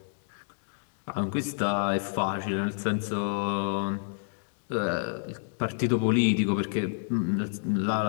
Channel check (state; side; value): silent; right; digital silence